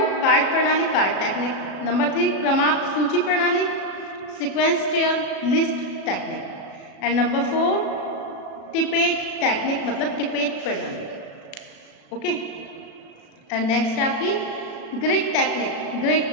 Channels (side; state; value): right; late; 37 ms